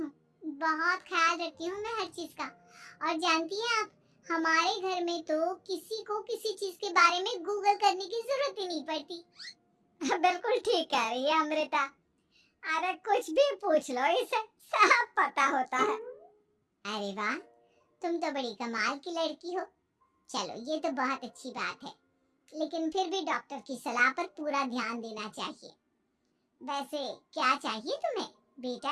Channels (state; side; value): identical; both; correlation 1.00